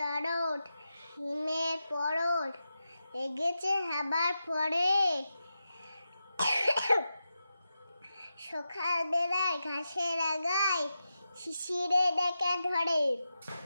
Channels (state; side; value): inverted; both; correlation -0.90